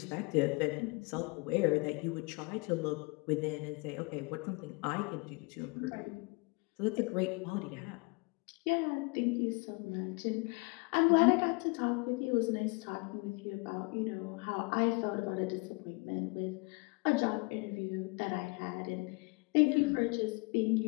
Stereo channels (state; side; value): quieter; right; 30.3 dB